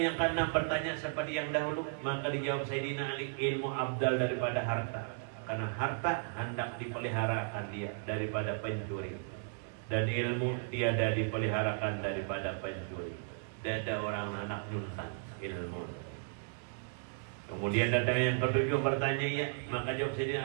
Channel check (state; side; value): silent; left; 54 dB below the other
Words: yang keenam, bertanya seperti yang dahulu. Maka dijawab Sayyidina Ali, ilmu abdal daripada harta. Karena harta hendak dipeliharakan dia daripada pencuri, dan ilmu tiada dipeliharakan daripada pencuri. Tidak ada orang anak nyuntan ilmu. Kemudian datang yang ketujuh, bertanya ya. Maka jawab